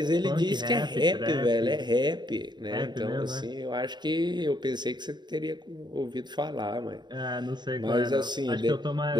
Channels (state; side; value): late; left; 0.21 ms